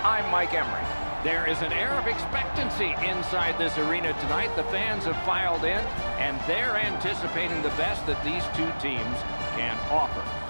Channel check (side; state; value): both; inverted; correlation -1.00